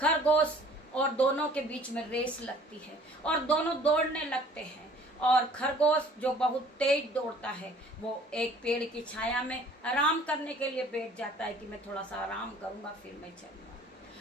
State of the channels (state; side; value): normal; both; correlation 0.53